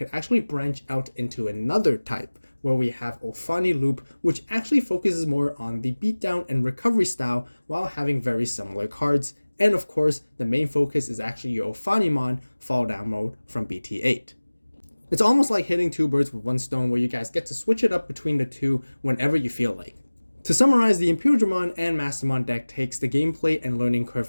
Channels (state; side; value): inverted; both; correlation -1.00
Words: actually branch out into another type, where we have Ulfani Loop, which actually focuses more on the beatdown and recovery style while having very similar cards. And of course, the main focus is actually your Ulfanimon fall down mode from BT8. It's almost like hitting two birds with one stone, where you guys get to switch it up between the two whenever you feel like. To summarize, the Imperialdramon and Mastemon deck takes the gameplay and learning